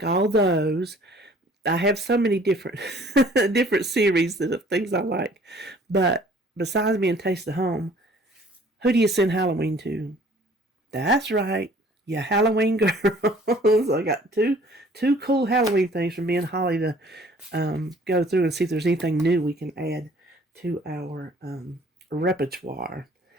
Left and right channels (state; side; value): normal; both; correlation 0.54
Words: all those. I have so many different different series of things I like. But besides being Taste of Home, who do you send Halloween to? That's right. Yeah, Halloween girls. I got two cool Halloween things from me and Holly to go through and see if there's anything new we can add to our repertoire.